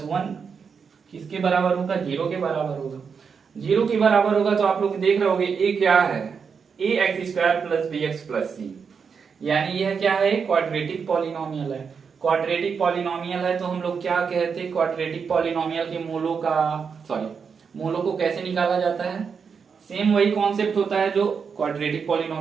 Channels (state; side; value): quieter; left; 6.1 dB